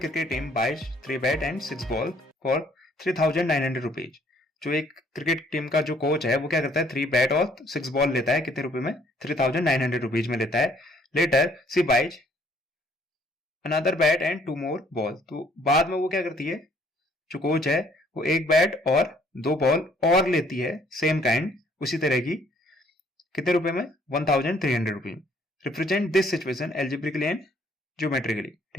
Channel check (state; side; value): normal; both; correlation 0.63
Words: team buys 3 bat and 6 ball for 3,900 rupees. जो एक cricket team का जो coach है वो क्या करता है, 3 बैट और 6 बॉल लेता है, कितने रुपए में, 3,900 रुपीज में लेता है। Later C buys another bat and 2 more ball. तो बाद में वो क्या करती है, जो कोच है वो 1 बैट और 2 बॉल और लेती है, सेम काइंड, उसी तरह की, कितने रुपए में, 1,300 rupees. Represent this situation algebraically and geometrically.